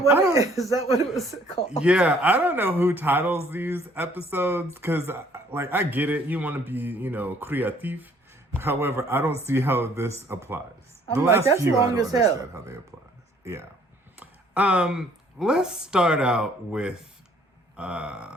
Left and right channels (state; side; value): normal; both; correlation 0.60